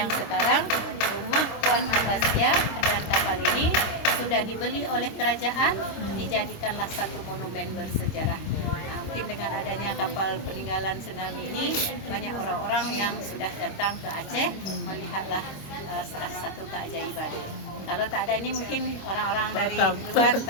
sekarang rumah Puan Abbasiyah dan kapal ini sudah dibeli oleh kerajaan, dijadikanlah satu monumen bersejarah. Mungkin dengan adanya kapal peninggalan tsunami ini, banyak orang-orang yang sudah datang ke Aceh melihatlah salah satu keajaiban. Kalau tak ada ini mungkin orang-orang dari luar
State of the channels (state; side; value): late; right; 26 ms